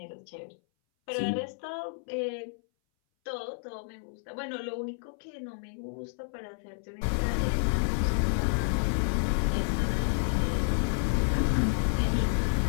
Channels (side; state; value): right; silent; 58 dB below the other